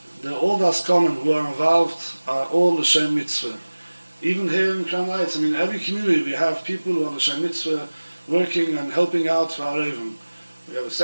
All the Askanim who are involved are all l'shem mitzvah. Even here in Crown Heights, every community we have people who are l'shem mitzvah working and helping out for Areivim. We have a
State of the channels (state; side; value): inverted; both; correlation -1.00